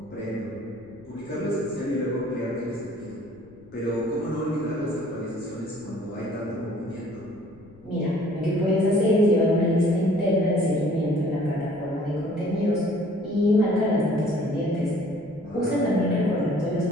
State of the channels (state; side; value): noise; left; rumble, 26 dB below the sound